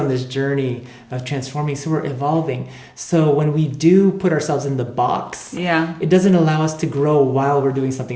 this journey of transforming. So we're evolving. So when we do put ourselves in the box, it doesn't allow us to grow while we're doing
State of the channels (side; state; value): both; identical; correlation 1.00